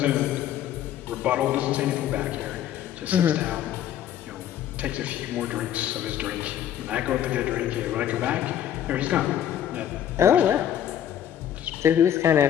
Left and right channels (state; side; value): quieter; right; 10.6 dB